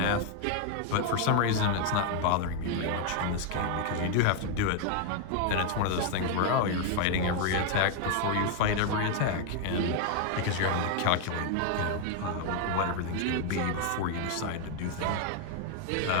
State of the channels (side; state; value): both; different; correlation 0.00